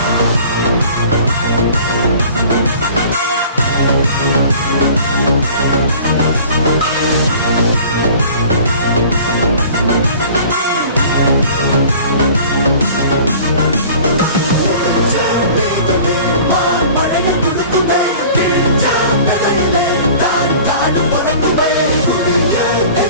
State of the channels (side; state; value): both; inverted; correlation -0.46